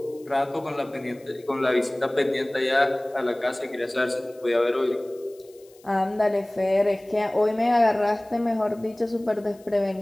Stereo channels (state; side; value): noise; left; hiss, 29 dB below the sound